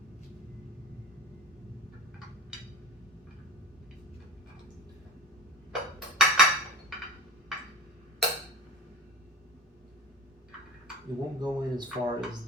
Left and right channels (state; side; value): normal; both; correlation 0.34